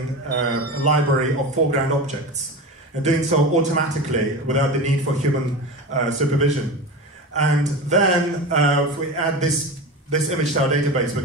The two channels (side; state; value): both; normal; correlation 0.27